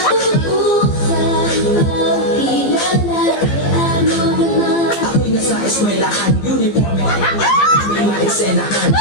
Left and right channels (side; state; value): right; late; 15 ms